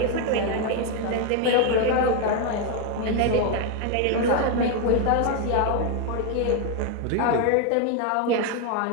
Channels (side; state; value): both; different; correlation 0.01